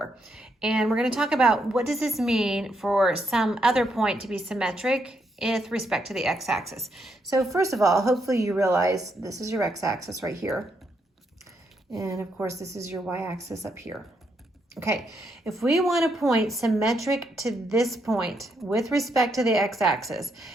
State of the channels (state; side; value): normal; both; correlation 0.78